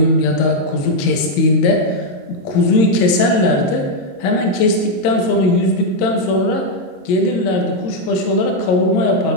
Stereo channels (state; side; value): late; right; 22 ms